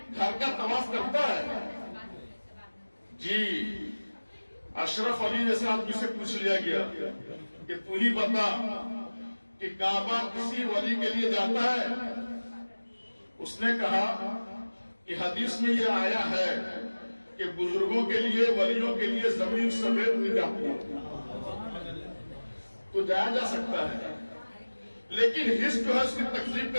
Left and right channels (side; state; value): both; inverted; correlation -1.00